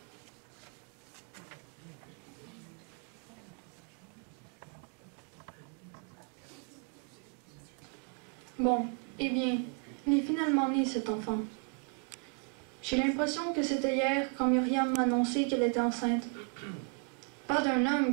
Bon, eh bien, il est finalement né cet enfant. J'ai l'impression que c'était hier quand Myriam m'a annoncé qu'elle était enceinte. Pas d'un homme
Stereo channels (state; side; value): quieter; left; 37.3 dB